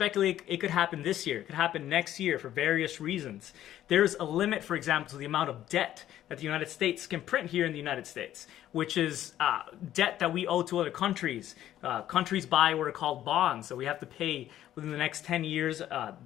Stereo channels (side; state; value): right; quieter; 12.4 dB